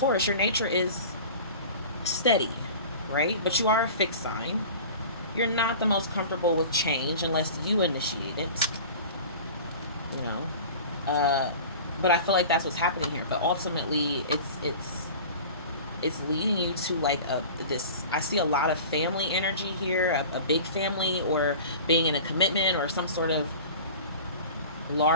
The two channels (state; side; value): inverted; both; correlation -0.38